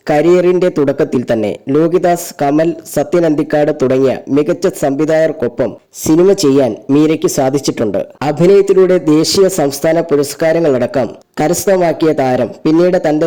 കരിയറിന്റെ തുടക്കത്തിൽ തന്നെ ലോഹിദാസ്, കമൽ, സത്യൻ അന്തിക്കാട് തുടങ്ങിയ മികച്ച സംവിധായകർക്കൊപ്പം സിനിമ ചെയ്യാൻ മീരയ്ക്ക് സാധിച്ചിട്ടുണ്ട്. അഭിനയത്തിലൂടെ ദേശീയ സംസ്ഥാന പുരസ്കാരങ്ങളടക്കം കരസ്ഥമാക്കിയ താരം പിന്നീട് തന്റെ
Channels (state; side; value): identical; both; correlation 1.00